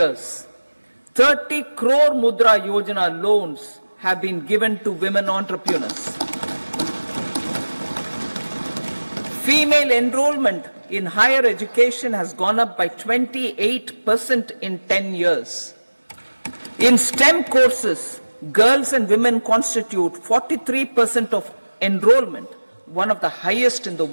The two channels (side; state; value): both; inverted; correlation -1.00